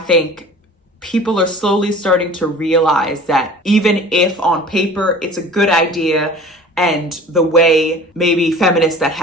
people are slowly starting to realize that even if on paper it's a good idea, and the way maybe feminists that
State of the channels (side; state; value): both; normal; correlation 0.43